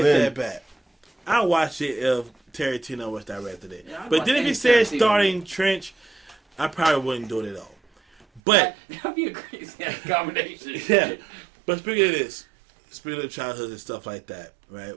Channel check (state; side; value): drops out; left; at 8.4 s